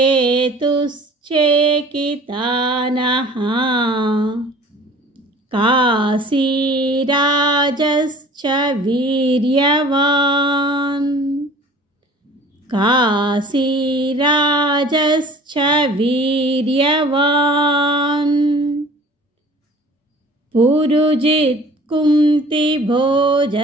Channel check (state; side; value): normal; both; correlation 0.47